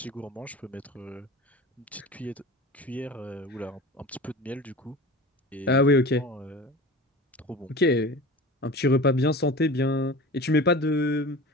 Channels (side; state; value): both; normal; correlation 0.35